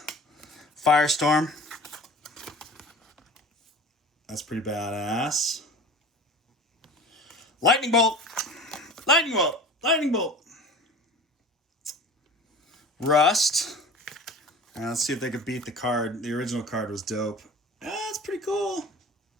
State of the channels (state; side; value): normal; both; correlation 0.39